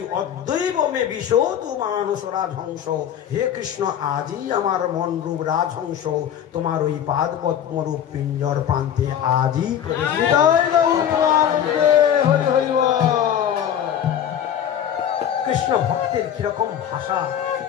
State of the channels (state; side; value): quieter; right; 9.6 dB